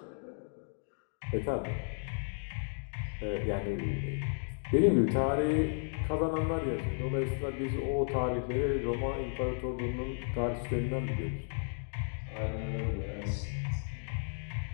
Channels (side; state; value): right; silent; 55 dB below the other